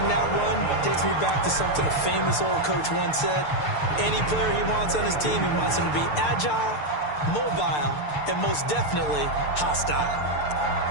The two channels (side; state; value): right; late; 6.7 ms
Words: that run takes me back to something a famous old coach once said. Any player he wants on his team, he wants him to be agile, mobile, and most definitely hostile.